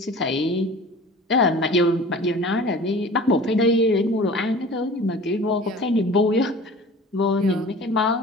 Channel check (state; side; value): normal; both; correlation 0.42